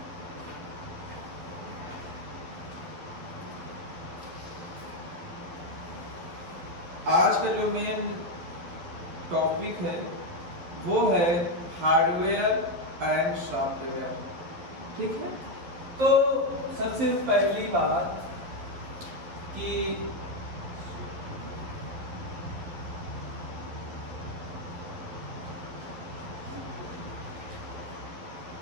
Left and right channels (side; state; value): left; late; 12 ms